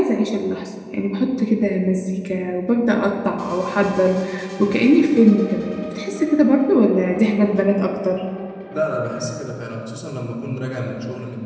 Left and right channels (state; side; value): identical; both; correlation 1.00